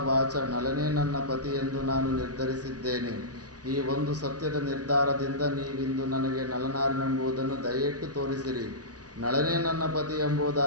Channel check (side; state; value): left; late; 0.68 ms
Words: ವಾಚ ನಳನೇ ನನ್ನ ಪತಿಯೆಂದು ನಾನು ನಿರ್ಧರಿಸಿದ್ದೇನೆ. ಈ ಒಂದು ಸತ್ಯದ ನಿರ್ಧಾರದಿಂದ ನೀವಿಂದು ನನಗೆ ನಳನಾರೆಂಬುದನ್ನು ದಯೆಯಿಟ್ಟು ತೋರಿಸಿರಿ. ನಳನೇ ನನ್ನ ಪತಿ